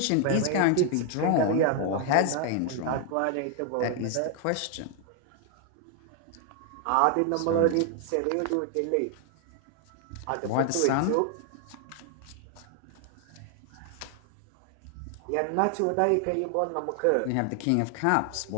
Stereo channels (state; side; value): different; both; correlation 0.00